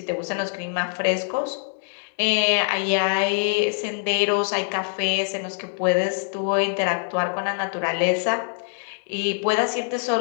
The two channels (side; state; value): right; silent; digital silence